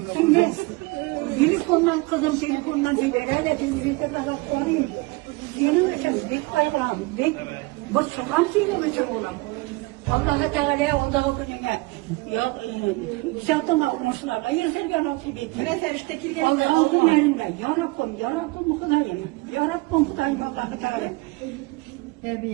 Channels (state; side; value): quieter; left; 24.1 dB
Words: Şimdi telefondan kızım telefondan diyor. Öyle telefonda daha koyayım. Benim için bir bayram. Bu sokan benim için olam. Allah Teala onda gününe ya zaten olmuşlarla yırtırken nasip etti. Ne sevişte kilgen. Allah günlerinde ya Rabbim Hudayım. Ya Rabbim Hudayım Allah Teala.